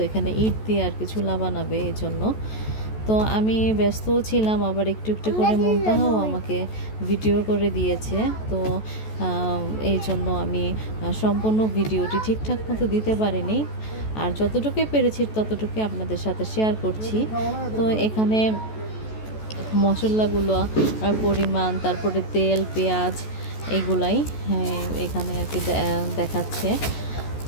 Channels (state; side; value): late; right; 14 ms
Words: এখানে ইট দিয়ে আর কি চুলা বানাবে, এই জন্য। তো আমি ব্যস্তও ছিলাম, আবার একটু একটু করে মুনতাহাও আমাকে ভিডিও করে দিয়েছে। তো এই জন্য আমি সম্পূর্ণ ভিডিওটি ঠিকঠাক মতো দিতে পারিনি, আর যতটুকুই পেরেছি ততটুকুই আপনাদের সাথে শেয়ার করছি। তো এখানে মশলাগুলো পরিমাণ, তারপরে তেল, পেঁয়াজ, এগুলাই এখানে আর কি দেখাচ্ছে।